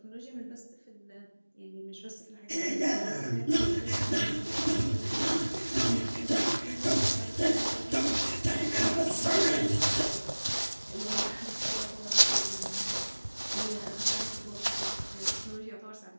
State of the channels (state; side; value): inverted; both; correlation -1.00